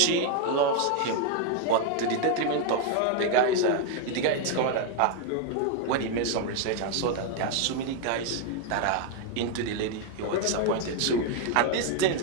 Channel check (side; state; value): both; different; correlation 0.00